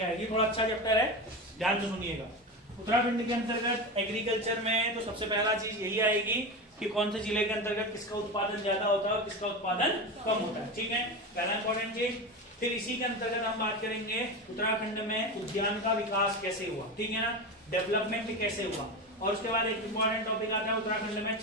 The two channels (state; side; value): normal; both; correlation 0.22